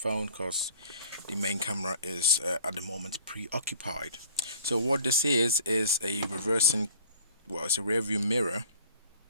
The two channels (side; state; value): both; inverted; correlation -0.48